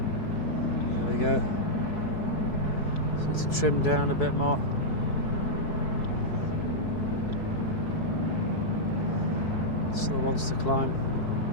There we go. Need to trim down a bit more. Still wants to climb.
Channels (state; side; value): late; right; 4.7 ms